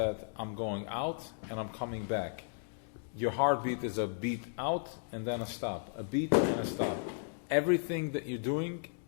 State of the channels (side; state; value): right; silent; digital silence